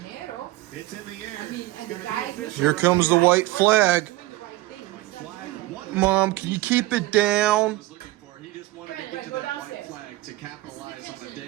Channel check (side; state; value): left; quieter; 18.2 dB